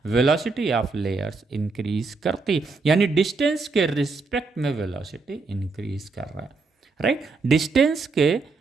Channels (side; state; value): left; quieter; 4.1 dB